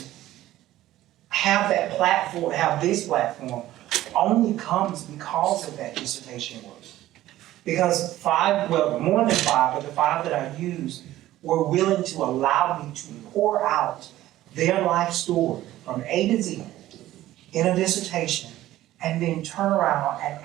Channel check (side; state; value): left; quieter; 14.8 dB